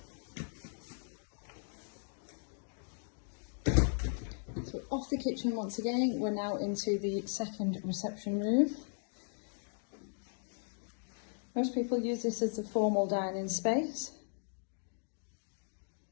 So off the kitchen once again, we're now into the second reception room. Most people use this as a formal dining space.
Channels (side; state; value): right; silent; digital silence